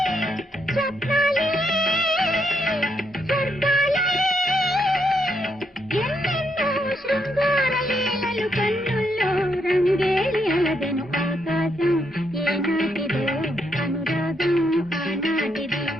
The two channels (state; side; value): normal; both; correlation 0.78